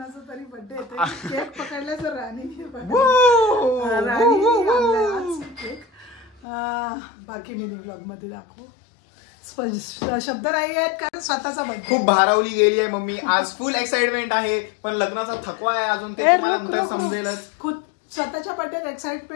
तरी बर्थडे येते. केक पकडला तर राणीने केक. बाकी मी व्लॉग मध्ये दाखवू. शब्द नाही आहेत कारण स्वतःचा बर्थडे. खूप भारावली गेली आहे मम्मी. आज फुल एक्साइटमेंट आहे पण लग्नाचा थकवा आहे अजून. ते तुम्हाला नंतर समजेलच. स्वतःच्या बर्थडेत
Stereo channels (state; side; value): drops out; right; at 6.4 s